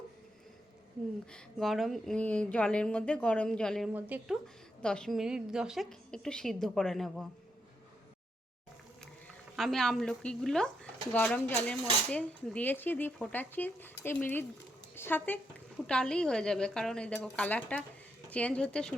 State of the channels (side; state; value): both; normal; correlation 0.80